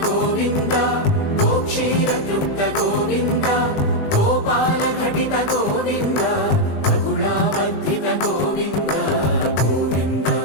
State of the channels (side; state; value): right; late; 20 ms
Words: గోవింద గోక్షీర తృప్త గోవింద గోపాల ఘటిత గోవింద బహుళావర్ధిత గోవింద గోవింద